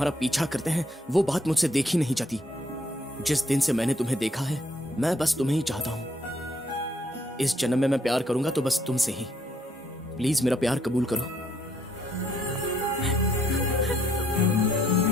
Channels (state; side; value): normal; both; correlation 0.69